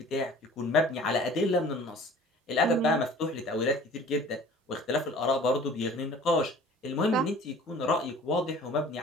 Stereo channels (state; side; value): normal; both; correlation 0.47